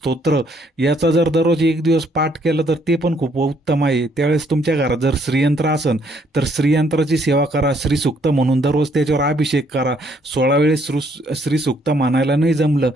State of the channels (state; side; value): normal; both; correlation 0.68